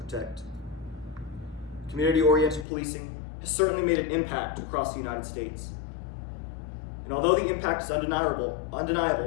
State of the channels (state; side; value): drops out; right; at 2.7 s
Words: Community-oriented policing has certainly made an impact across the United States. And although the impact is undeniable,